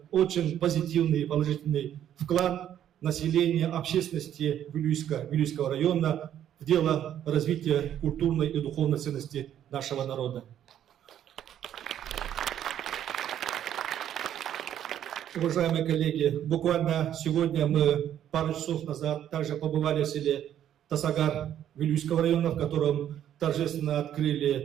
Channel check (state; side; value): quieter; left; 10.6 dB